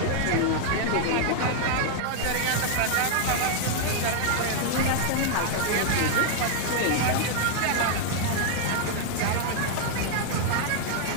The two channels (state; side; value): different; both; correlation -0.01